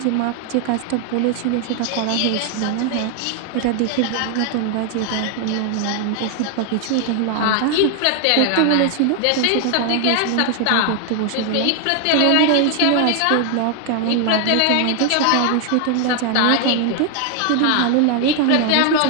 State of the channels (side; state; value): both; different; correlation 0.00